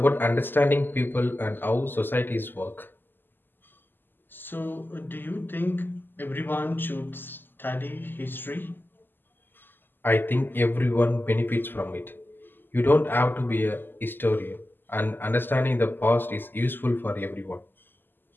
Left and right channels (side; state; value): right; late; 0.094 ms